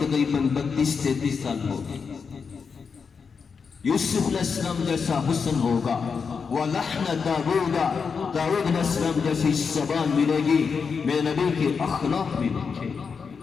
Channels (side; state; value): right; quieter; 5.7 dB